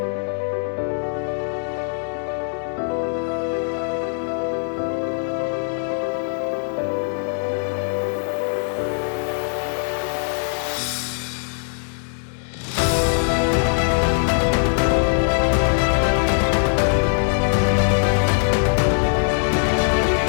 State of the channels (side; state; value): right; silent; digital silence